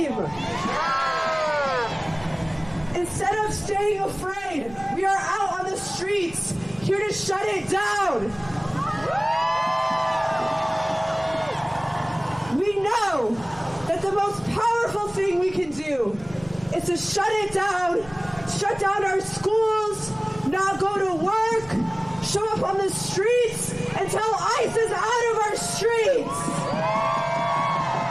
Instead of staying afraid, we are out on the streets here to shut it down. We know that the most powerful thing we can do is to shut it down, shut down our schools, not go to work, show up on the streets until ICE is out of our streets.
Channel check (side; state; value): left; noise; rumble, 21 dB below the sound